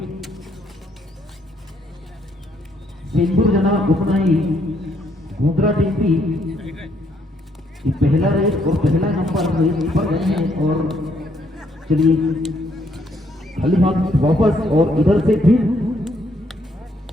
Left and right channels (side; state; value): both; normal; correlation 0.71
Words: सेंदूर जनाब उतना ही गोंदरा टीम भी पहला रेस और पहला नंबर रेस पर गए हैं। और चलिए खाली हाथ वापस और इधर से फिर